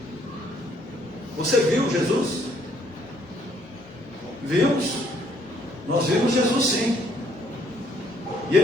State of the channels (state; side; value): normal; both; correlation 0.66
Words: Você viu Jesus? Vimos. Nós vimos Jesus, sim. E